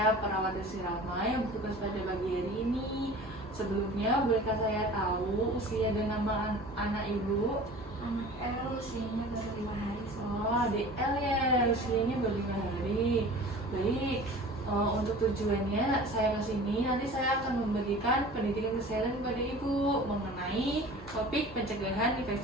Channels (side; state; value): both; normal; correlation 0.41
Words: perawat Desi Rama yang bertugas pada pagi hari ini. Sebelumnya, bolehkah saya tahu usia dan nama anak Ibu? Anak L usianya baru 5 hari. Oh, adik L ya, usianya baru 5 hari. Baik, untuk tujuannya saya ke sini, nanti saya akan memberikan pendidikan kesehatan kepada Ibu mengenai topik pencegahan